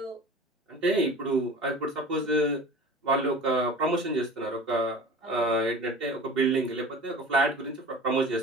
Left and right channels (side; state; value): both; normal; correlation 0.38